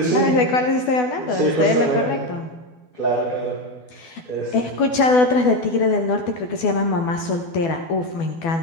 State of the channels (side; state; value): right; late; 12 ms